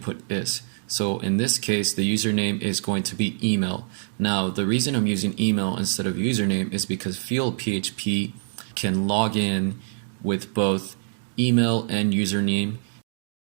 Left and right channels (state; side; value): silent; left; digital silence